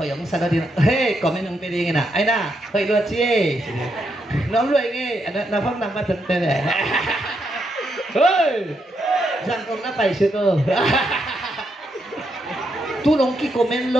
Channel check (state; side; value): normal; both; correlation 0.80